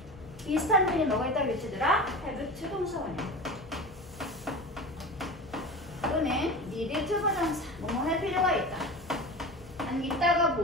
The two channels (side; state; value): both; normal; correlation 0.31